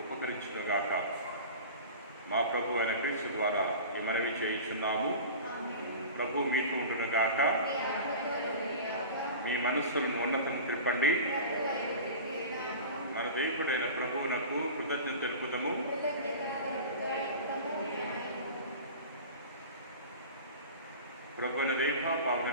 ఉపకరించునుగాక. మా ప్రభు అయిన క్రీస్తు ద్వారా ఈ మనవి చేయుచున్నాము. ప్రభు మీకు ఉండునుగాక. మీ మనస్సులను ఉన్నతను త్రిప్పండి. మన దేవుడైన ప్రభువునకు కృతజ్ఞత తెలుపుదము. ప్రభువున దేవ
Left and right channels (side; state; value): both; inverted; correlation -0.35